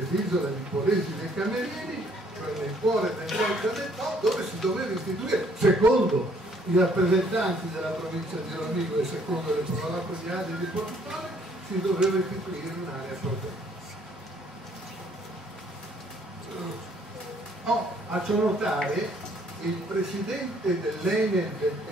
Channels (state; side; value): normal; both; correlation 0.63